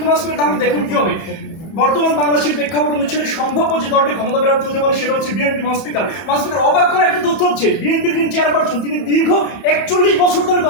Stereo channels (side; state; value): right; late; 31 ms